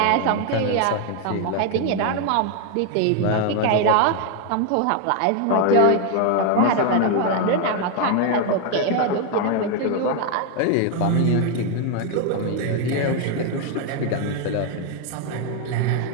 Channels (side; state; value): both; different; correlation 0.01